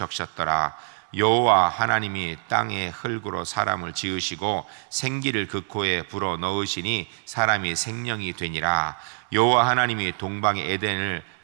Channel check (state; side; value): silent; left; 62 dB below the other